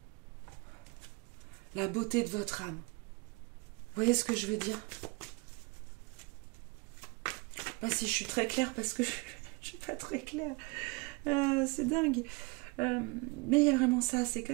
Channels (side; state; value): left; quieter; 27.0 dB